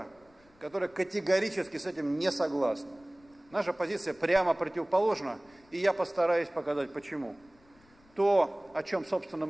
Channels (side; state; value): left; noise; rumble, 30 dB below the sound